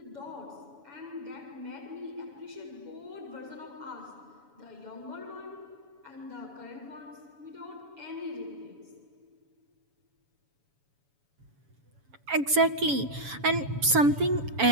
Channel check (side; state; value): left; late; 7.1 ms